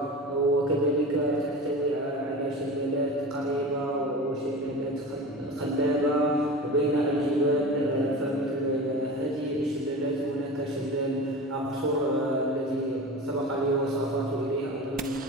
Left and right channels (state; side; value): normal; both; correlation 0.32